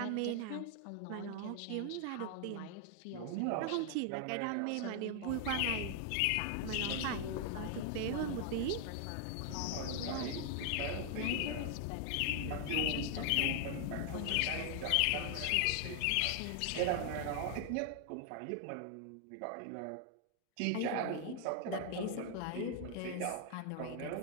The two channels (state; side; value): different; both; correlation 0.00